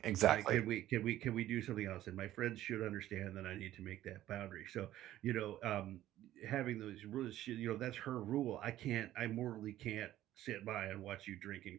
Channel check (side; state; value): left; quieter; 13.7 dB